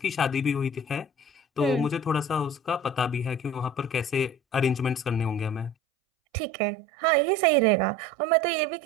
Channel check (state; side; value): drops out; left; at 5.8 s